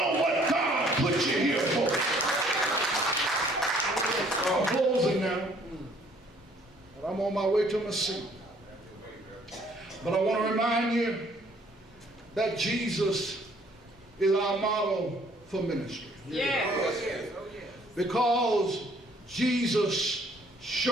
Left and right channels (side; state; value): both; normal; correlation 0.61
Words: what God put you here for. I'm closing now. And I'm on my way to my seat. But I want to remind you that Jesus is our model for ministry. Yes. Because Jesus